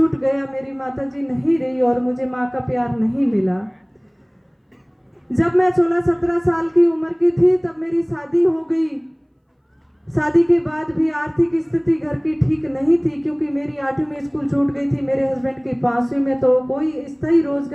गया, मेरी माताजी नहीं रही और मुझे माँ का प्यार नहीं मिला। जब मैं 16-17 साल की उम्र की थी तब मेरी शादी हो गई। शादी के बाद भी आर्थिक स्थिति घर की ठीक नहीं थी, क्योंकि मेरी 8वीं में स्कूल छूट गई थी, मेरे हस्बैंड की 5वीं में, तो कोई स्थायी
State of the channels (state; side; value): identical; both; correlation 1.00